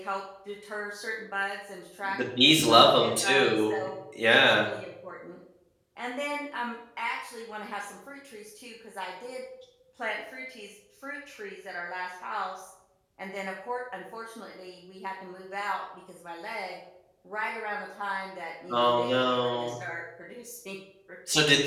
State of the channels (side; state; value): both; identical; correlation 1.00